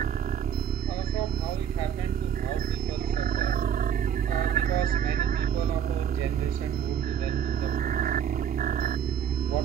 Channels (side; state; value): left; quieter; 8.8 dB